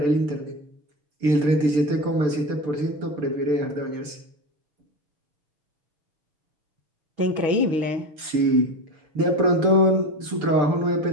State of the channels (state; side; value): late; left; 6.7 ms